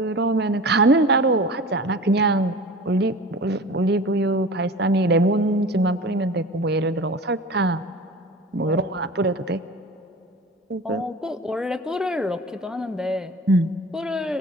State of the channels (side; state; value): both; normal; correlation 0.37